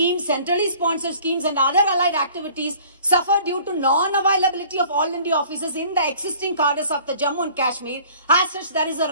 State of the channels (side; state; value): both; inverted; correlation -0.51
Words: centrally sponsored schemes and other allied activities suffer due to non-availability of all India offices in the existing cadres of the Jammu and Kashmir. As such, there is a